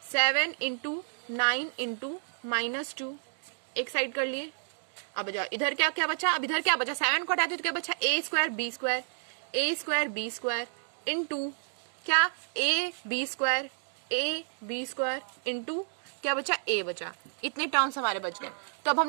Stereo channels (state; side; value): silent; left; digital silence